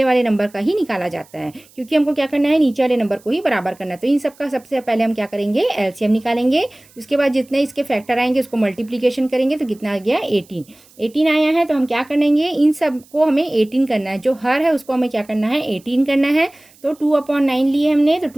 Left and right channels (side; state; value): right; noise; hiss, 28 dB below the sound